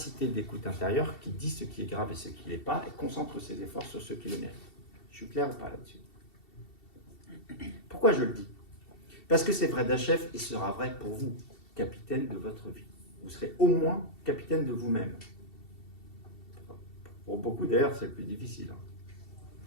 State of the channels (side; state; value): right; late; 2.7 ms